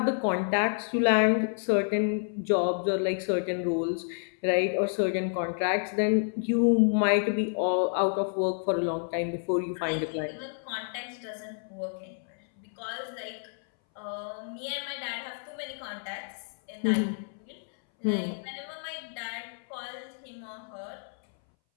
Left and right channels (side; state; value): right; silent; 58 dB below the other